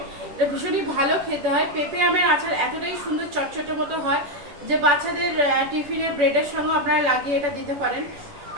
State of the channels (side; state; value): left; late; 10 ms